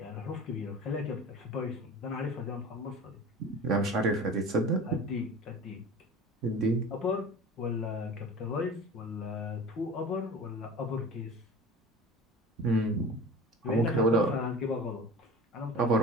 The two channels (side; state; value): both; normal; correlation 0.37